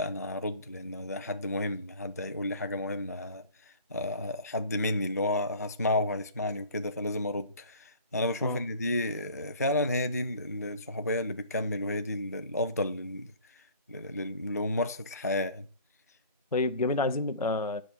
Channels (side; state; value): both; inverted; correlation -0.48